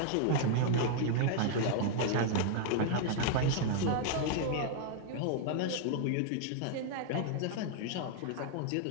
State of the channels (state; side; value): different; both; correlation 0.00